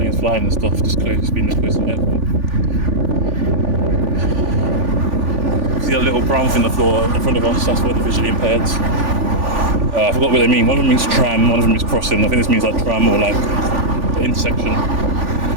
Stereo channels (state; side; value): late; left; 3.5 ms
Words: flying and stuff, just close, being this close to the airport. See that little brown thing on the floor in front of us, that's for the visually impaired. I forgot what they mean. One of them means tram, one of them means crossing. I think this means like tram or like the intersection.